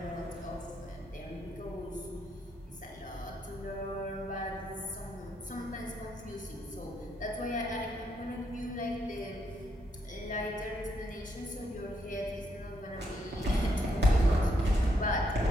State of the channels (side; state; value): both; normal; correlation 0.76